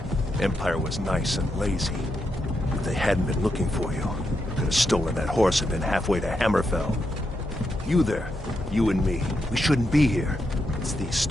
Empire was nice and lazy. If they hadn't been looking for you, could have stolen that horse and been halfway to Hammerfell. You there, you and me, we shouldn't be here. It's these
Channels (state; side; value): normal; both; correlation 0.83